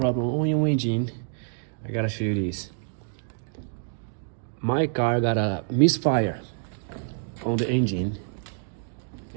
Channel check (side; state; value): left; silent; 59 dB below the other